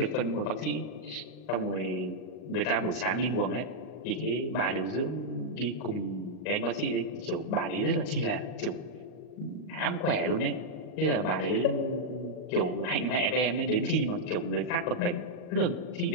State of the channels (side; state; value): right; late; 40 ms